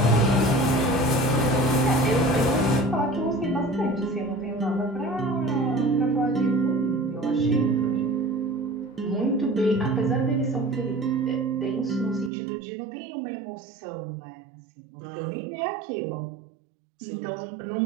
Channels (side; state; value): left; drops out; at 12.3 s